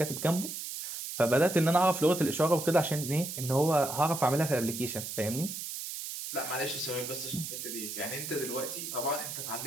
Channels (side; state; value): right; noise; hiss, 7 dB below the sound